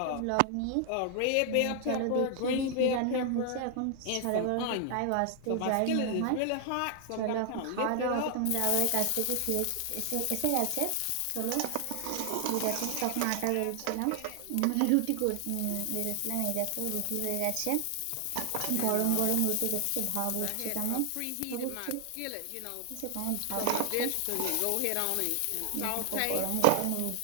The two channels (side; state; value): both; different; correlation 0.00